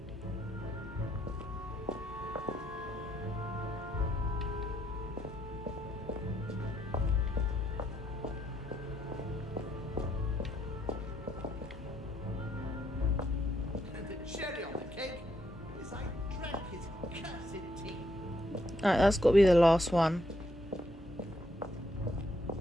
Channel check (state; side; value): normal; both; correlation 0.74